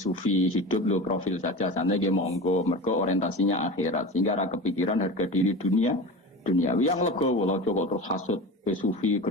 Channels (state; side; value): normal; both; correlation 0.30